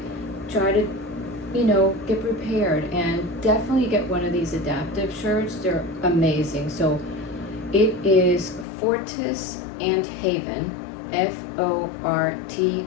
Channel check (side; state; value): right; drops out; at 8.7 s